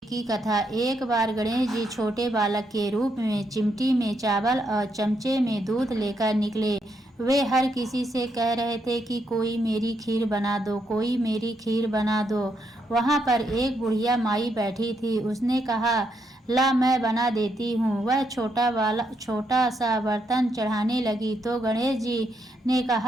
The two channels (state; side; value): normal; both; correlation 0.78